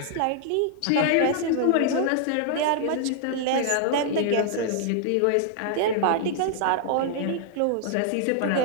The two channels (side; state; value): both; different; correlation -0.01